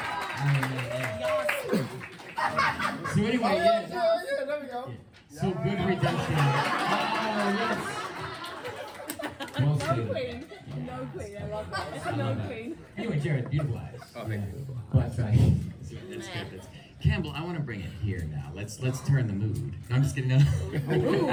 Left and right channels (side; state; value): both; identical; correlation 1.00